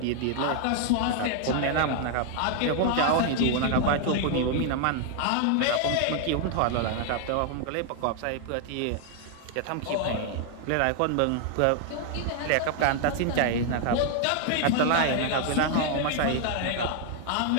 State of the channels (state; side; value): different; both; correlation 0.00